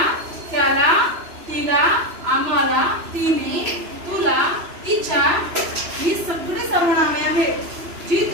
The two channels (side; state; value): left; late; 3.0 ms